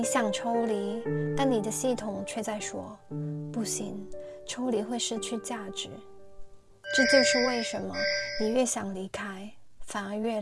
想抽离，但你的系统却在说，不行，抽离会失去价值。这就是为什么你越想离开，反而越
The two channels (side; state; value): both; identical; correlation 1.00